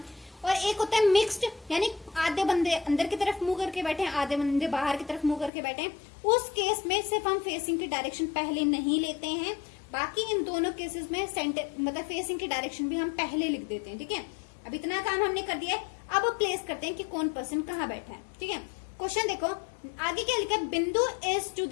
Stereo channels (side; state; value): right; drops out; at 5.5 s